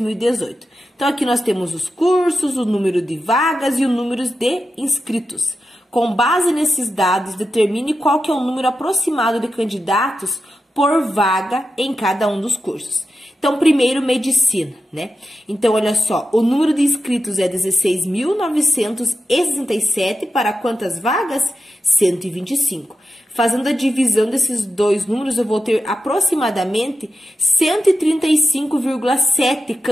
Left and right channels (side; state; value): both; normal; correlation 0.90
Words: Então, aqui nós temos os cursos, o número de vagas e o número de inscritos. Com base nesses dados, determine qual que é o número aproximado de candidatos por vaga em cada um dos cursos. Então, primeiro, medicina, né? Então, olha só, o número de inscritos é 16.967 para quantas vagas? 125. Fazendo a divisão desses dois números, eu vou ter aproximadamente 135,7